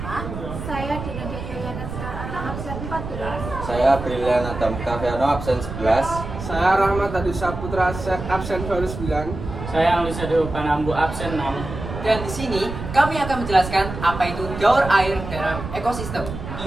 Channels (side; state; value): right; noise; rumble, 8 dB below the sound